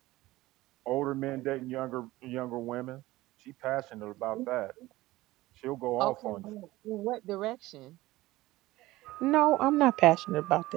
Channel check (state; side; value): quieter; left; 18.0 dB